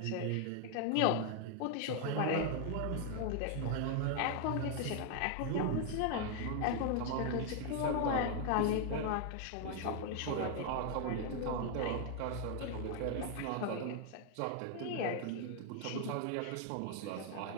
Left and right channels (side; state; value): both; different; correlation 0.00